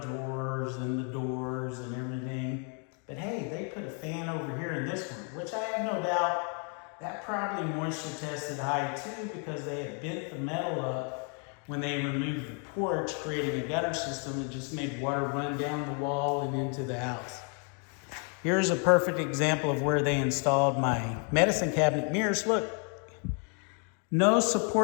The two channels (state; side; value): quieter; right; 39.7 dB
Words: and the doors and everything. But hey, they put a fan over here in this one, which I have no doubt that probably moisture tested high too, because they had bent the metal up when they removed the porch, creating a gutter system that just made water run down the wall and into the house. Here's a perfect example of where they installed my medicine cabinet mirrors. Look, no